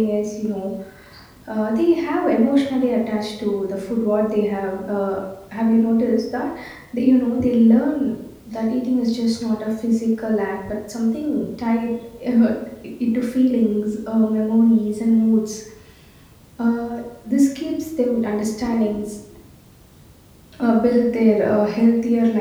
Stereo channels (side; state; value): both; identical; correlation 1.00